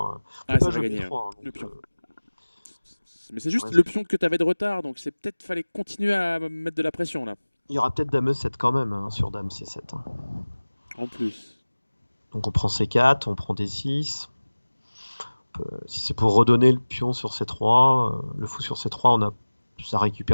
ah, peut pas ça va jouer gagner hein, B3, hein, le donc pion. Mais c'est on juste reste- le pion que tu avais de retard, donc c'est peut-être fallait continuer à mettre de la pression là. il y aura peut-être Dame E7 quand même, hein, sur Dame C7, hein. En plus. Donc on prend C4, on prend D6. Si c'est pour redonner le pion sur C3, le fou sur C3, ça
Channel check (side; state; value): both; inverted; correlation -1.00